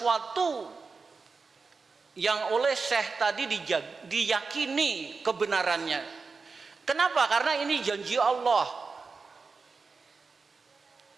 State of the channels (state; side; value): quieter; left; 4.5 dB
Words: yang oleh Syekh tadi diyakini kebenarannya. Kenapa? Karena ini janji Allah.